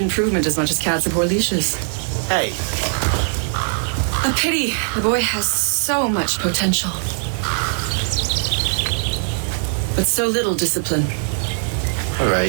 as much as cats abhor leashes. Hey. A pity. The boy has so much potential. But so little discipline. All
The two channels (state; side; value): silent; left; digital silence